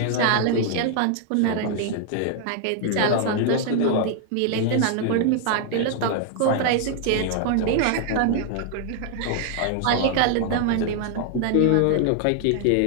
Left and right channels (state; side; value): different; both; correlation 0.00